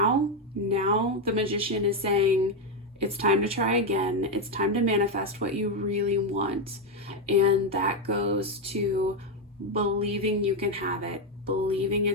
the Magician is saying it's time to try again. It's time to manifest what you really want. And that goes to believing you can have it, believing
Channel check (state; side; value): normal; both; correlation 0.06